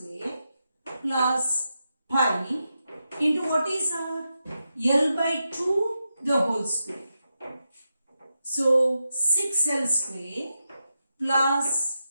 plus pi into what is our L by 2 the whole square. So 6L square plus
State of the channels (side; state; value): both; inverted; correlation -0.88